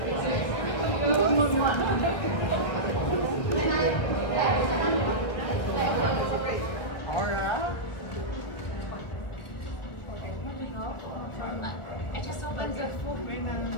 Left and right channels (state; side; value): late; right; 1.4 ms